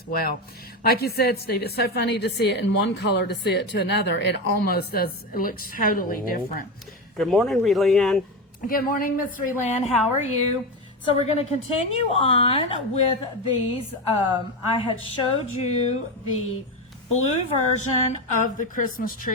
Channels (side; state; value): both; normal; correlation 0.17